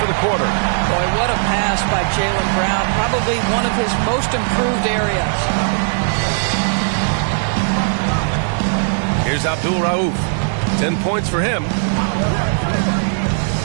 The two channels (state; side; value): silent; left; 68 dB below the other